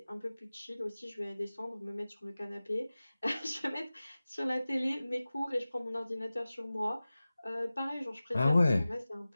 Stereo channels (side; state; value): both; inverted; correlation -0.97